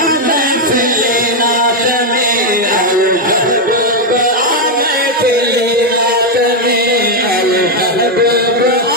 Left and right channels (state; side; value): normal; both; correlation 0.02